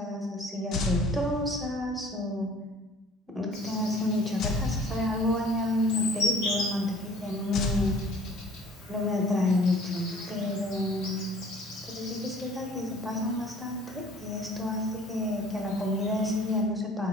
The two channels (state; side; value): normal; both; correlation 0.51